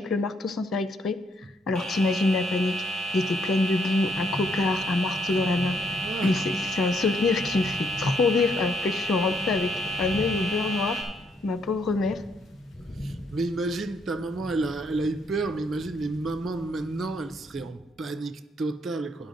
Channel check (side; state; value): both; normal; correlation 0.72